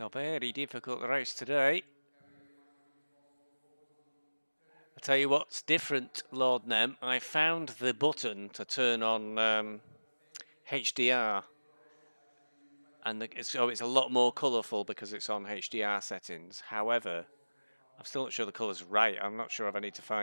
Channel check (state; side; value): inverted; both; correlation -1.00